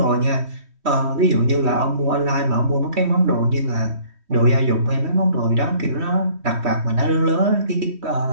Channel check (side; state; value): left; late; 3.1 ms